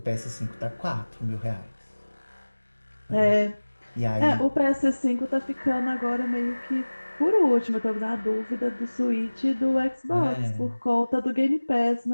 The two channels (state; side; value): inverted; both; correlation -1.00